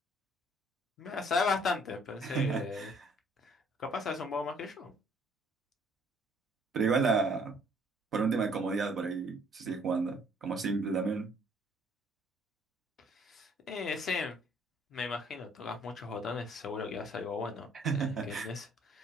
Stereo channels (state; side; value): normal; both; correlation 0.61